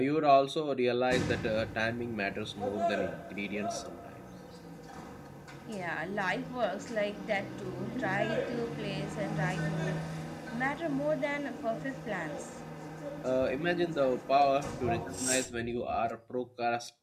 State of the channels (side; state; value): both; identical; correlation 1.00